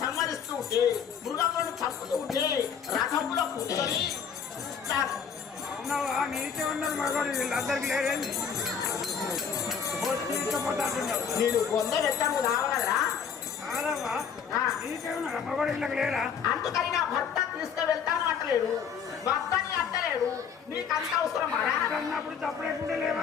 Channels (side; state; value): right; quieter; 7.1 dB